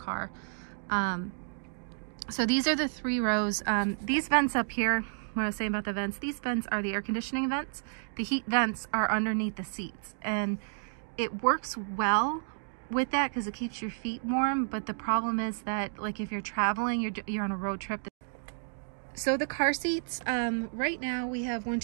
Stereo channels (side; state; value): left; silent; digital silence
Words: So these are the 3 rows. These vents up here, what I was saying about the vents, these vents are the air conditioning vents. The heat vents are underneath the seats, and it works well with that because it keeps your feet warm. But the problem is that, like, if you're traveling, you're on a road trip. So the car seats, right now we have 1,